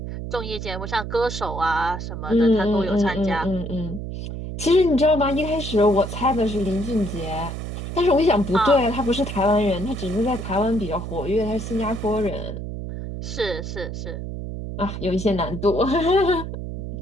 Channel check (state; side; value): noise; right; hum, 7 dB below the sound